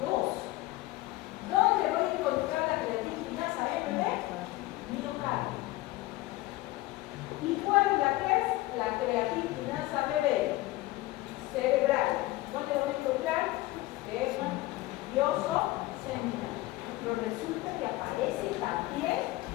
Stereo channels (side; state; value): right; quieter; 18.3 dB